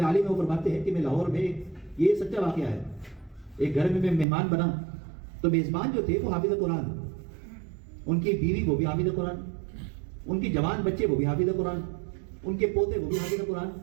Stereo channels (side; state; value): left; drops out; at 4.2 s